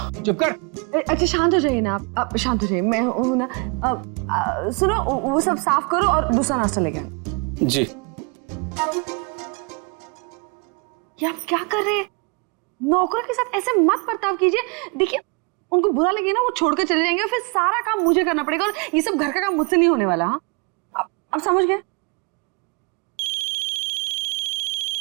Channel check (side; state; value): left; quieter; 32.4 dB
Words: चुप कर। अच्छा शांत हो जाइए ना आप शांत हो जाइए। मैं हूं ना। सुनो, वो सब साफ करो और दूसरा नाश्ता लेके आना। जी। ये आप क्या कर रहे हैं? नौकरों के साथ ऐसे मत बर्ताव कीजिए। देखिए, उनको बुरा लगे ना, वो छोड़कर चले जाएंगे और फिर सारा काम मुझे करना पड़ेगा और ये सब घर का काम मुझसे नहीं होने वाला। हाँ, अब समझ गए?